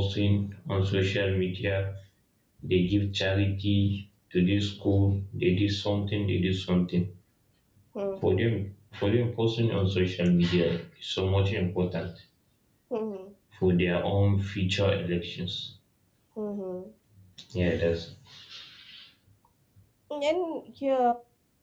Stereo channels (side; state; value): both; identical; correlation 1.00